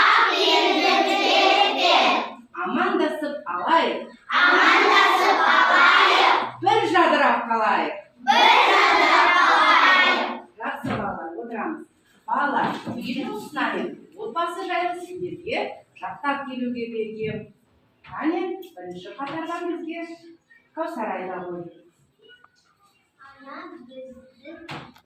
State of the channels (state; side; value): identical; both; correlation 1.00